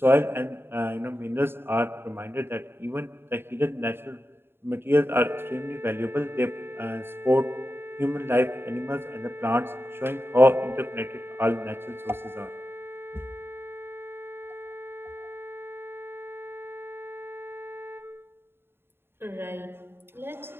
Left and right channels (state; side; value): late; left; 0.11 ms